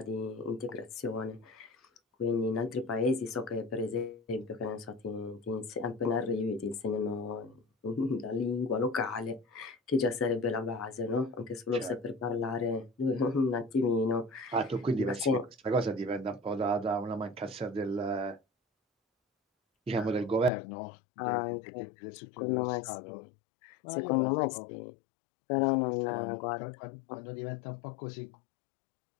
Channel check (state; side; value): drops out; right; at 20.5 s